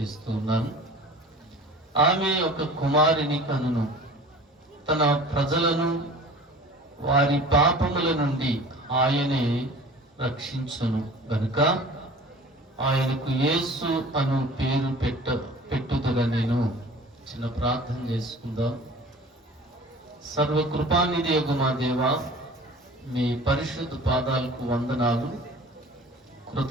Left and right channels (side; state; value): both; normal; correlation 0.43